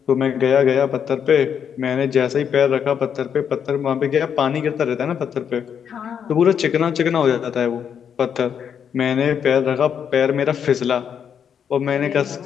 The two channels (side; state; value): right; quieter; 7.9 dB